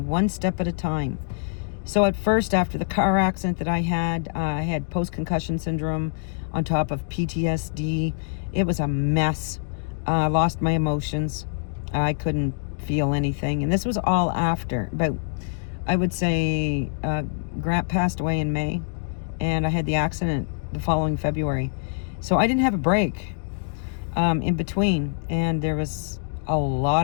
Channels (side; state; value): right; silent; digital silence